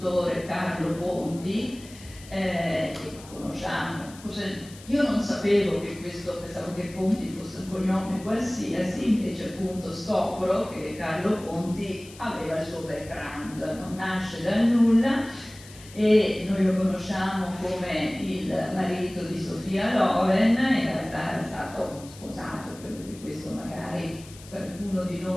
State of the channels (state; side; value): noise; left; hiss, 19 dB below the sound